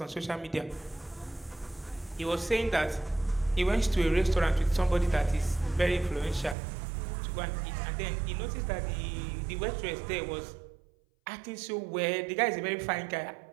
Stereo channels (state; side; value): drops out; left; at 6.6 s